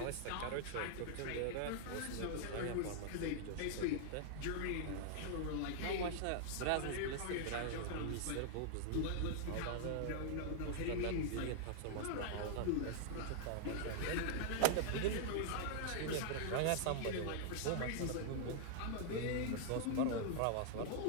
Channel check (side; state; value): both; different; correlation -0.01